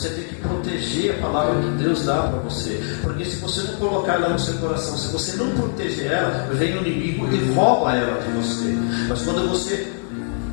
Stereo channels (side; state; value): right; silent; digital silence